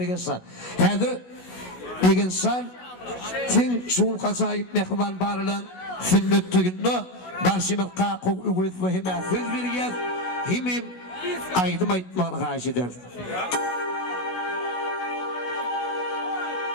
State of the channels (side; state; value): right; late; 16 ms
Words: insan hedir bir insan tin şuul kasayip mehriban barılan sünnet tüyünü başımız Kakov Ügüdöv ve hime söz veriyez himim aydım aytmağını karşı eder.